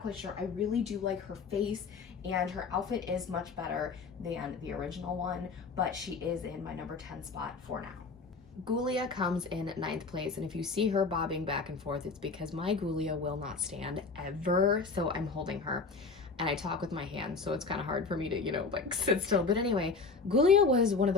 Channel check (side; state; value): right; quieter; 4.4 dB